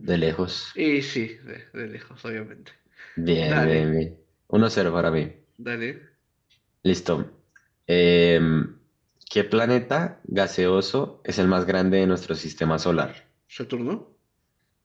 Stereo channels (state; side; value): identical; both; correlation 1.00